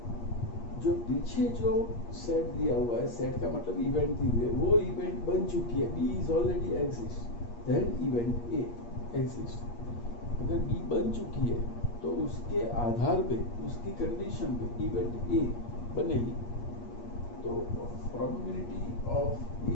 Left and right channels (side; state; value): right; late; 8.5 ms